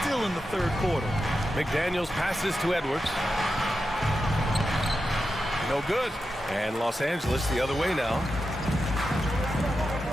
in the third quarter. McDaniels passes to Edwards. No good. And Los Angeles the other way now.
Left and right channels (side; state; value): both; normal; correlation 0.89